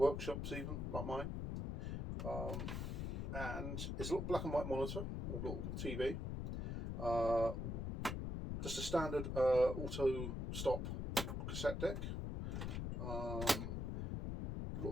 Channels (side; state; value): left; noise; rumble, 2 dB below the sound